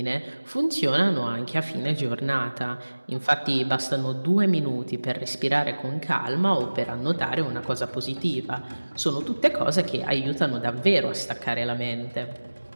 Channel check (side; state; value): both; inverted; correlation -1.00